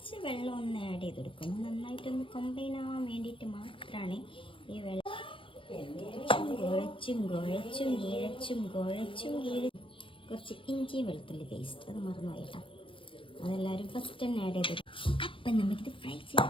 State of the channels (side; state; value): right; late; 0.25 ms